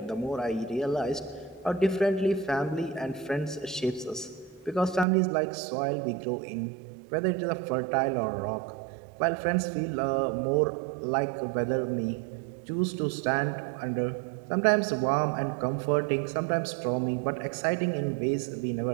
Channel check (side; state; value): left; drops out; at 5.1 s